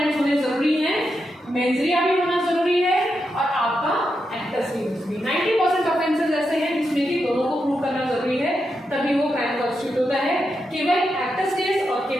होने जरूरी हैं, मेंजिया भी होना जरूरी है और आपका एक्टस रियस भी। 90% ऑफेंसेस ऐसे हैं जिसमें कि दोनों को प्रूव करना जरूरी है, तभी वो क्राइम कॉन्स्टिट्यूट होता है। केवल एक्टस रियस और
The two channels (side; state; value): both; normal; correlation 0.85